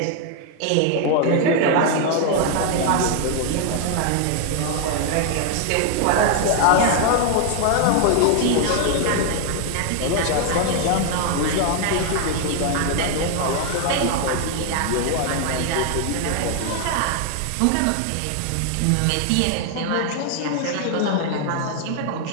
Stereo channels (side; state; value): both; different; correlation 0.00